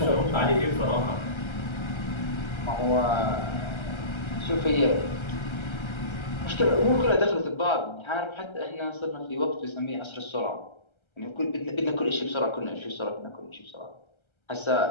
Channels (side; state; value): right; late; 1.3 ms